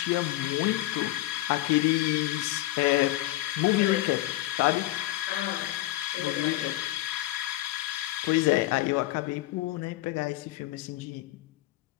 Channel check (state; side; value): quieter; right; 16.6 dB